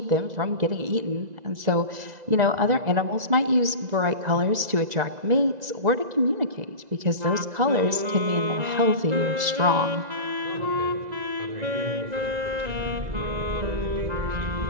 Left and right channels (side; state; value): left; late; 2.0 ms